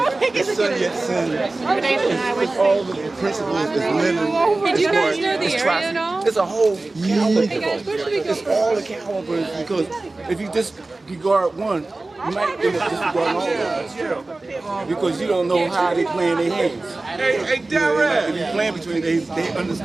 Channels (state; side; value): quieter; left; 3.1 dB